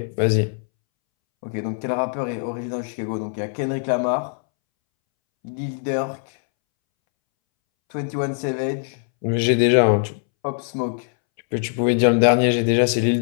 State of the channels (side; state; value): right; silent; 64 dB below the other